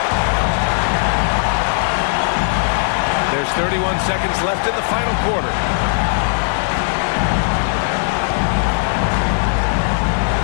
There's 31 seconds left in the final quarter.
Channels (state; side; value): silent; right; 66 dB below the other